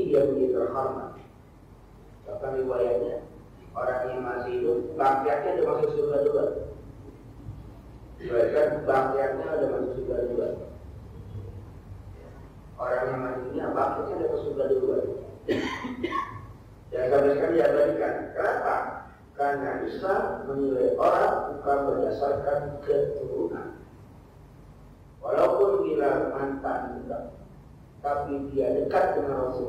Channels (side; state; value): both; identical; correlation 1.00